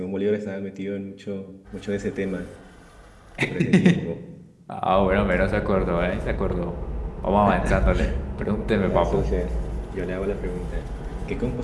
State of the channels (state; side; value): identical; both; correlation 1.00